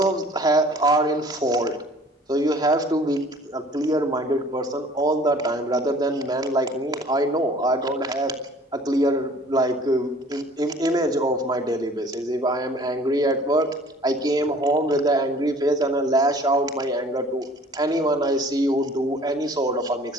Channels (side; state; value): both; normal; correlation 0.51